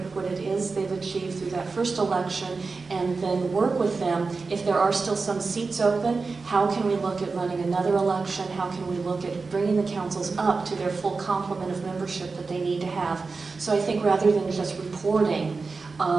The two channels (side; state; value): left; quieter; 4.2 dB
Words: what it is they've achieved through that first election and then work with them. If there are still some seats open, how can we look at running another election? How can we look at bringing the councils up to their full complement of membership that they need to have? So I think rather than just reporting,